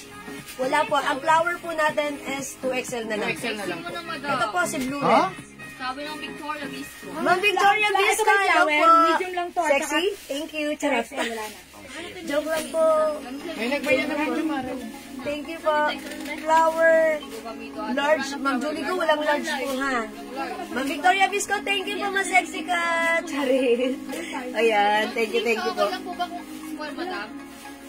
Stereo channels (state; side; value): identical; both; correlation 1.00